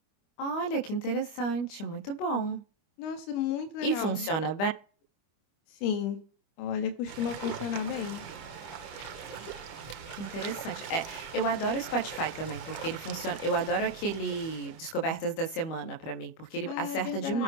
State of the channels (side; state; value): right; late; 25 ms